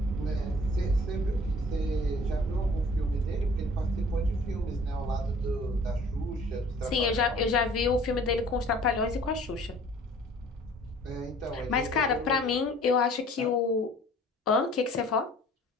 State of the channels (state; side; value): normal; both; correlation 0.51